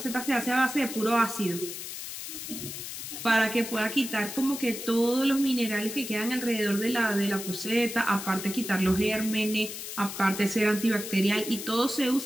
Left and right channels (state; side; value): noise; left; hiss, 8 dB below the sound